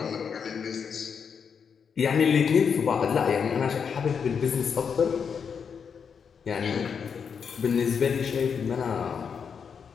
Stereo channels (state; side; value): quieter; right; 6.6 dB